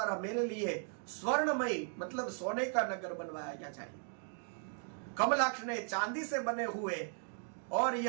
मेरे लिए स्वर्णमयी मतलब सोने का नगर बनवाया जाए। कमलाक्ष ने चांदी से बने हुए और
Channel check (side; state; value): left; silent; 53 dB below the other